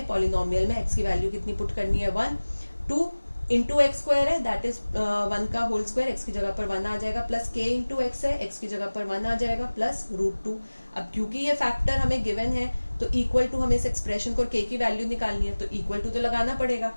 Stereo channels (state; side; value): inverted; both; correlation -1.00